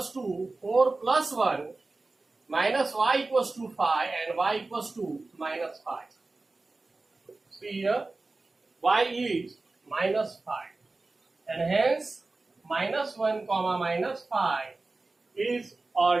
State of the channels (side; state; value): left; quieter; 3.4 dB